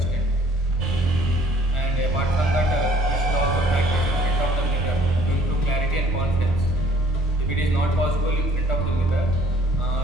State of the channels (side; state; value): both; normal; correlation 0.57